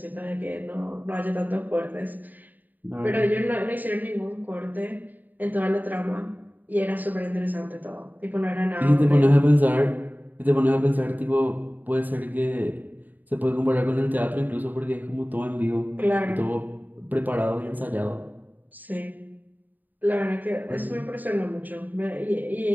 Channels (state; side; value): late; left; 0.085 ms